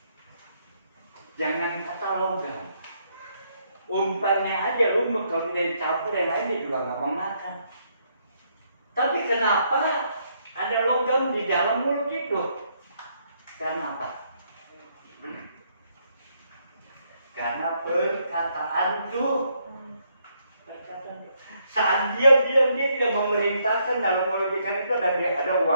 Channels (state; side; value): inverted; both; correlation -0.74